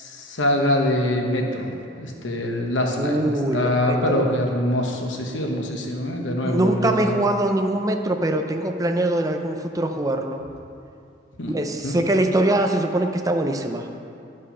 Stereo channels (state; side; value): normal; both; correlation 0.50